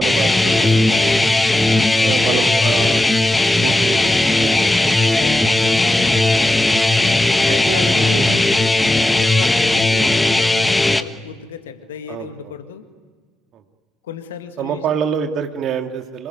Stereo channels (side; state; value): both; normal; correlation 0.90